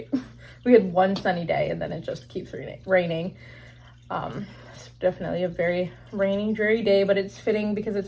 We had one sunny day and then it just keeps raining. It's definitely a very rainy, dreary day, but it's fitting because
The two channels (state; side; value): identical; both; correlation 1.00